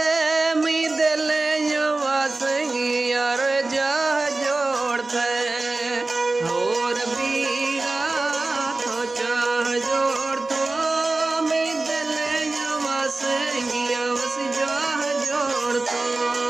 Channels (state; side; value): quieter; left; 3.2 dB